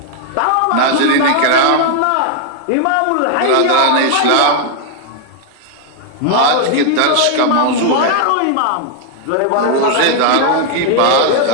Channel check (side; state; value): both; different; correlation 0.00